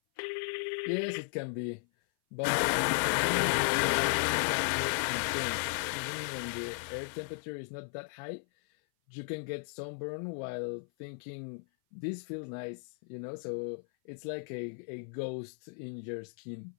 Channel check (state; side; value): silent; right; 54 dB below the other